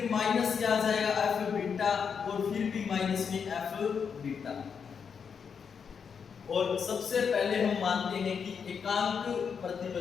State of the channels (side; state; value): right; quieter; 6.5 dB